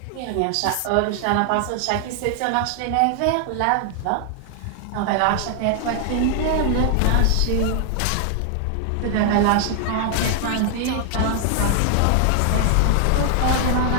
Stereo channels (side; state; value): both; different; correlation 0.00